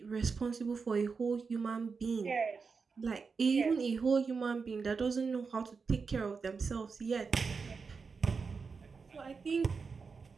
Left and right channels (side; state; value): left; quieter; 5.0 dB